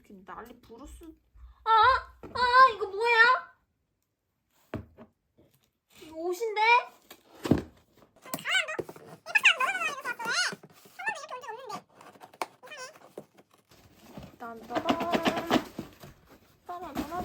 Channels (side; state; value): both; identical; correlation 1.00